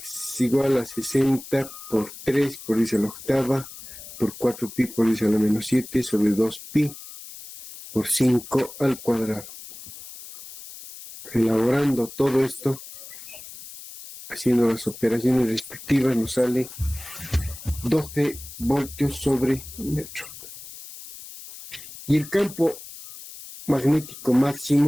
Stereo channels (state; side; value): noise; left; hiss, 13 dB below the sound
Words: igual a 60 por 3 por 10 a la octava, por 4 pi por 10 a la menos 7, sobre 2 pi por 5 al cuadrado. Elaborando todo esto, haciendo las operaciones respectivas, nos sale 12 voltios sobre metro. Y el campo magnético